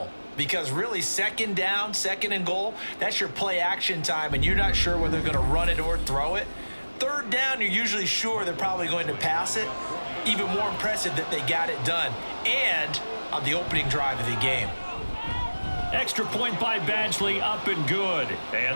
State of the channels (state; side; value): inverted; both; correlation -1.00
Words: Because really, 2nd down, 2nd and goal, that's your play action time, and you're not sure whether they're going to run it or throw it. 3rd down, you're usually sure they're probably going to pass it. Even more impressive that they got it done. And on the opening drive of the game. Extra point by Badgley, up and good.